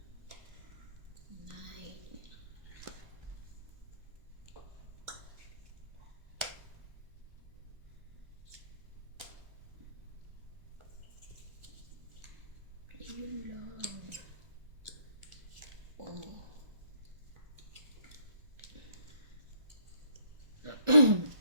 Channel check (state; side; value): late; left; 1.3 ms